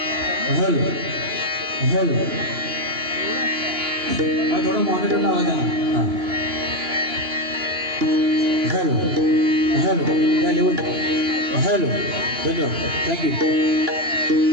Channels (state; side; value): late; left; 2.9 ms